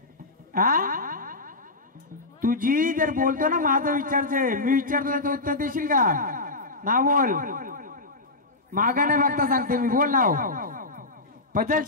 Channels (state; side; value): quieter; right; 3.1 dB